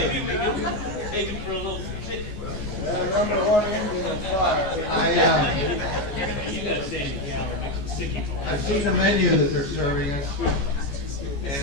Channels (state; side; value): late; right; 14 ms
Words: we can take him for a little trip. Number one engine is fire. You gotta stay in the gallery, make some sticky balls. I've seen the menu that they're serving us,